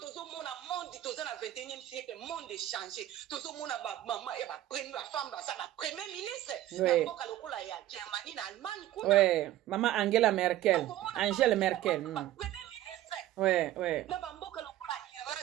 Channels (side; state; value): left; quieter; 13.8 dB